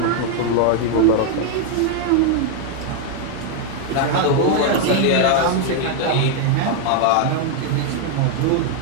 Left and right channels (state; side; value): different; both; correlation 0.00